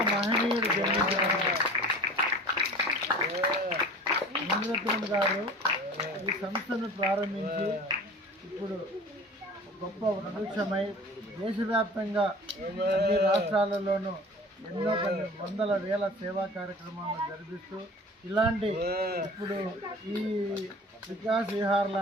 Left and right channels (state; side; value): normal; both; correlation 0.41